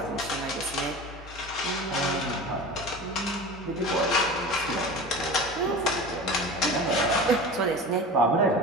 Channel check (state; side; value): normal; both; correlation 0.33